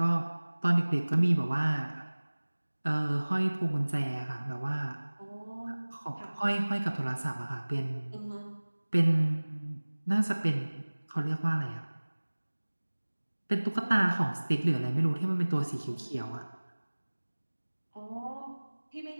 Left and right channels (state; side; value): inverted; both; correlation -1.00